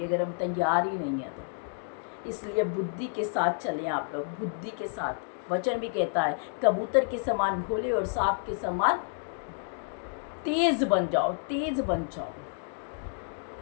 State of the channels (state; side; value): silent; right; 58 dB below the other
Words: अगर हम तैयार ही नहीं हैं तो। इसलिए बुद्धि के साथ चलें आप लोग, बुद्धि के साथ। वचन भी कहता है, कबूतर के समान भोले और सांप के समान तेज बन जाओ, तेज बन जाओ।